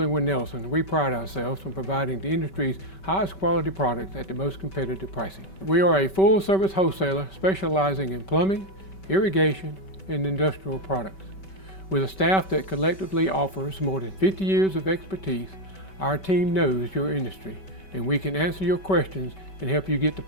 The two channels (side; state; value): right; late; 5.2 ms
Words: Nelson, we pride ourselves on providing the industry's highest quality products at the most competitive pricing. We are a full-service wholesaler specializing in plumbing, irrigation, and industrial products. With a staff that collectively offers more than 50 years of expertise, our team knows your industry, and we can answer your questions and help you get the